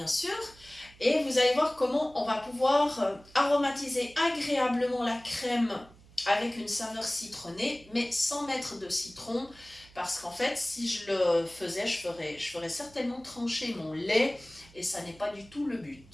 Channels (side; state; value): right; noise; hum, 24 dB below the sound